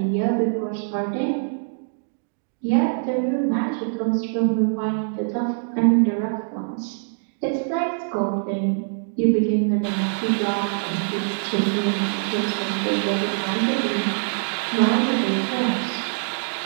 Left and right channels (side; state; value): left; silent; digital silence